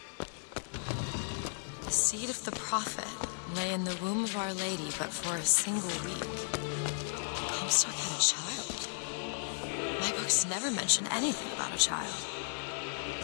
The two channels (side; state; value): right; silent; 55 dB below the other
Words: The seed of the prophet lay in the womb of Our Lady, but for a single week. Comstock had a child. My books never mention anything about a child.